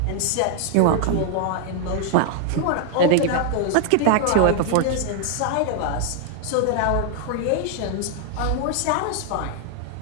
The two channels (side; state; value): both; different; correlation 0.00